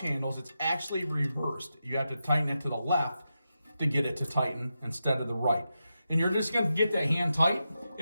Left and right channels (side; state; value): both; inverted; correlation -0.89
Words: handles, it's actually reversed. You have to tighten it to the left to get it to tighten instead of the right. And you're just going to get that hand tight.